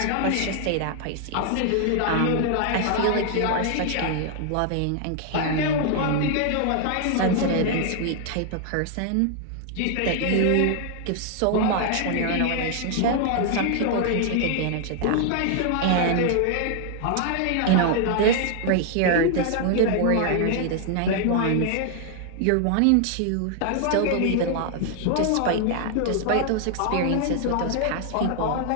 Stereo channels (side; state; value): both; different; correlation 0.00